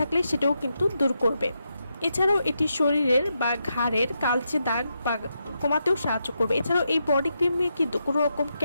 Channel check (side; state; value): both; inverted; correlation -0.84